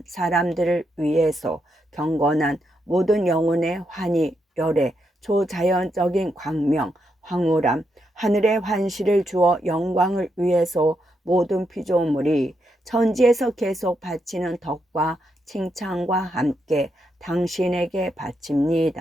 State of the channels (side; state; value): both; normal; correlation 0.81